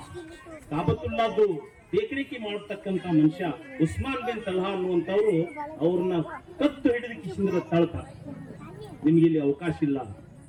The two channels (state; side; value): identical; both; correlation 1.00